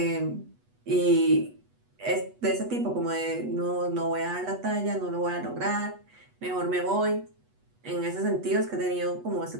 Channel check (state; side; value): late; left; 8.2 ms